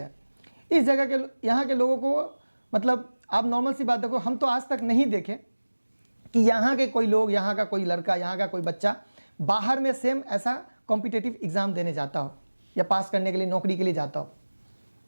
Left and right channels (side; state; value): both; inverted; correlation -1.00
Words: इस जगह के यहाँ के लोगों को मतलब आप नॉर्मल सी बात देखो, हम तो आज तक नहीं देखे कि यहाँ के कोई लोग, यहाँ का कोई लड़का, यहाँ का कोई बच्चा बाहर में सेम ऐसा कॉम्पिटिटिव एग्जाम देने जाता हो या पास करने के लिए नौकरी के लिए जाता हो।